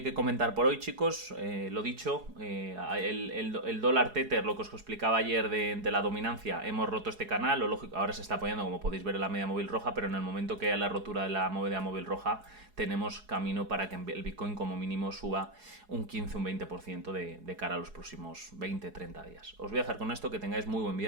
comentar por hoy, chicos. Lo dicho, el dólar tether, lo que os explicaba ayer de la dominancia, hemos roto este canal. Lo lógico, ahora se está apoyando, como podéis ver, en la media móvil roja, pero en el momento que haya la rotura de la media móvil roja, tenemos camino para que el Bitcoin como mínimo suba un 15, un 20% de cara a los próximos 20, 30 días. Os voy a dejar con esto, que tengáis muy buen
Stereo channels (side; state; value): left; late; 4.7 ms